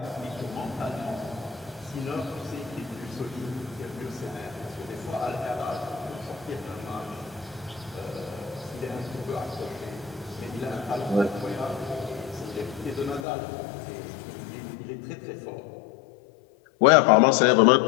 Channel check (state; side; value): drops out; right; at 13.2 s